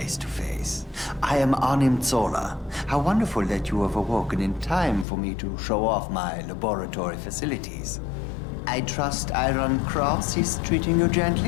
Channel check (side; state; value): right; drops out; at 5.1 s